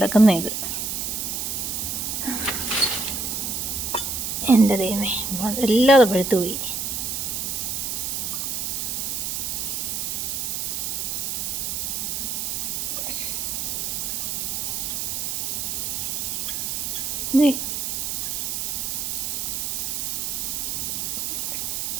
ഇത് എൻ്റെ ദൈവമേ, എല്ലാതെ പഴുത്തു പോയി.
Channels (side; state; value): right; noise; hiss, 1 dB below the sound